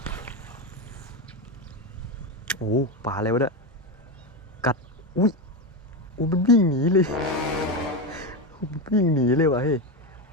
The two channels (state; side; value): normal; both; correlation 0.14